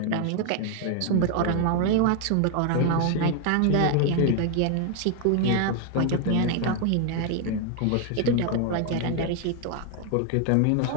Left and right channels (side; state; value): both; different; correlation 0.00